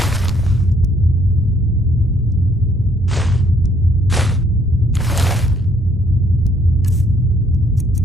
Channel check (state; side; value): normal; both; correlation 0.66